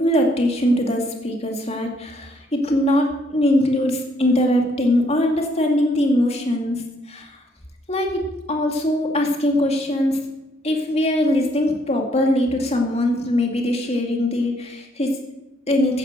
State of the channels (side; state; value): both; normal; correlation 0.69